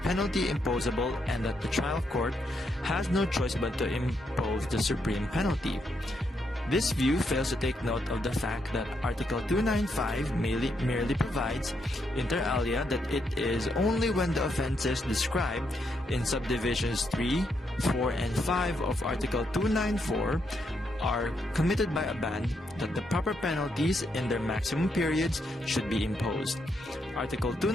imposable, and that the trial court has no choice but to impose the supreme penalty. This view fails to take note of the fact that Article 295 merely provides, inter alia, that it is only when the offenses described in subdivisions 3, 4, and 5 of Article 294 are committed by a band that the proper penalties in their maximum periods should be imposed. Article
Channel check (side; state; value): both; normal; correlation 0.78